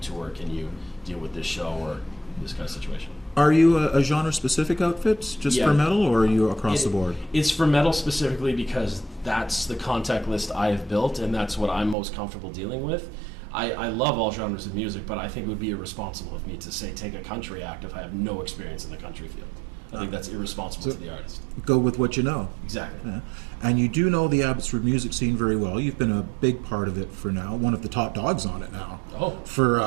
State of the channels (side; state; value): left; drops out; at 12.0 s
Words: Can you deal with this show or this kind of situation? Are you a genre-specific outfit, just Yeah. for metal, or are you across the board? It's for metal specifically because that's the contact list I have built, and that's what I'm most comfortable dealing with. I love all genres of music, but I think it would be irresponsible of me to say take a country act if I have no experience in the country field. I think that's irresponsible to the artist. Go with what you know. Exactly. Yeah. And you do know the Abbotsford music scene very well. You've been a big part of it for now, one of the top dogs on it now. Oh. For